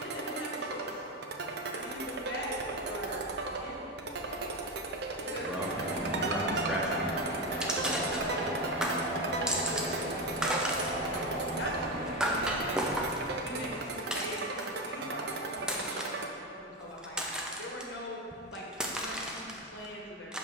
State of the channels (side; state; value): both; normal; correlation 0.14